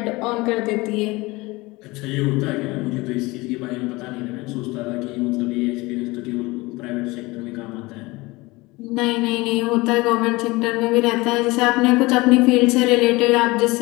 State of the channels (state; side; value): quieter; right; 22.3 dB